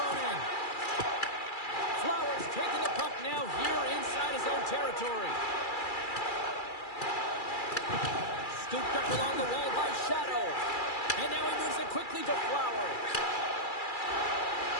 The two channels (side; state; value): right; late; 2.3 ms